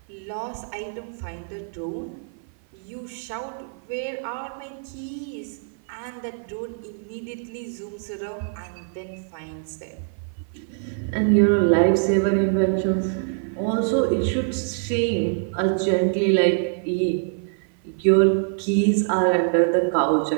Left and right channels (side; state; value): left; silent; 55 dB below the other